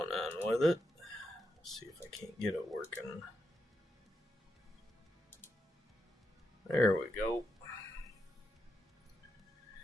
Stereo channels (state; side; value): normal; both; correlation 0.84